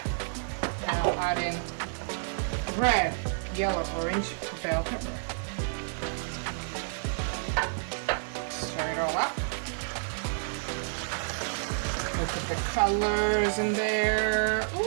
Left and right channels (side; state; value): left; silent; digital silence